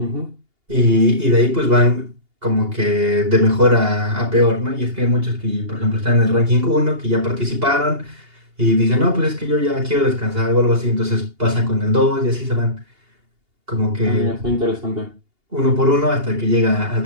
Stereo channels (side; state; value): left; late; 2.8 ms